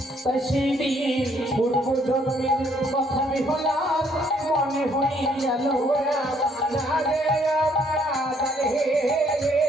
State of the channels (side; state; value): both; normal; correlation 0.66